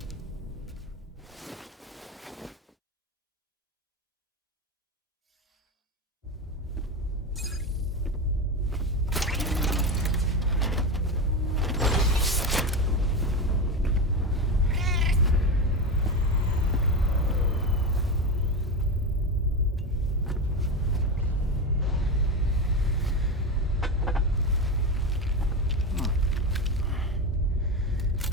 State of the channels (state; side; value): normal; both; correlation 0.18